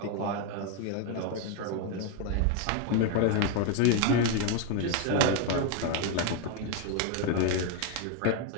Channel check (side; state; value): both; different; correlation 0.01